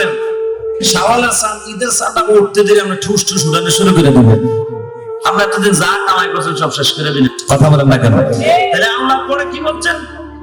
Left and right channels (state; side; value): identical; both; correlation 1.00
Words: শাওয়ালের চাঁদ ঈদের চাঁদটা উঠতে দিলে আমরা ঠুস ঠুস উঠানো শুরু করে দেবেন। আমরা এতদিন যা কামাই করছেন সব শেষ করে দিলেন। কথা বলেন না কেন? তাহলে আল্লাহ পরে কি বলছেন?